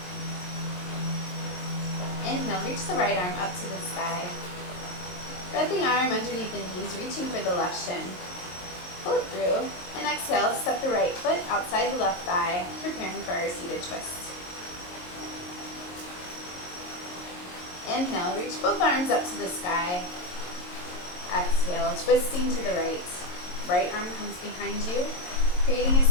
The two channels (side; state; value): right; late; 22 ms